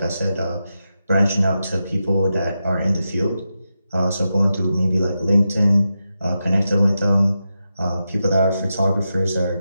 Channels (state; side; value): inverted; both; correlation -0.89